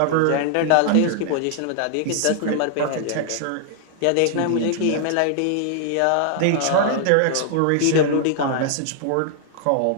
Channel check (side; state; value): both; different; correlation 0.00